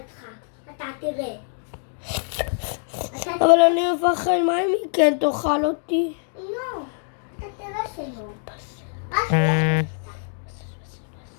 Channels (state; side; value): silent; right; digital silence